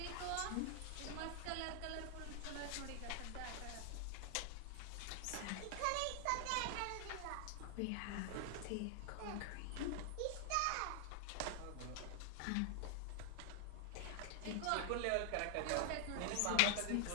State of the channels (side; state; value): both; different; correlation 0.00